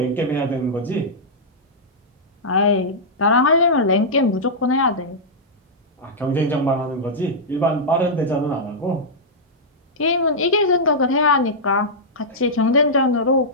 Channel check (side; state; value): both; normal; correlation -0.10